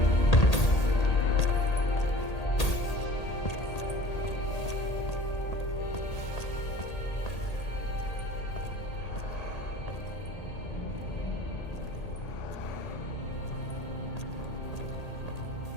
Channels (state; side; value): late; right; 1.8 ms